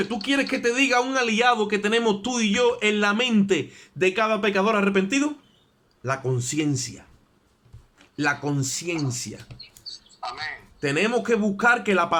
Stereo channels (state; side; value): identical; both; correlation 1.00